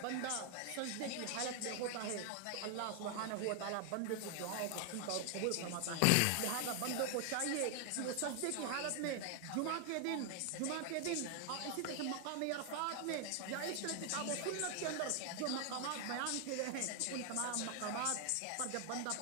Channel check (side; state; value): both; different; correlation 0.00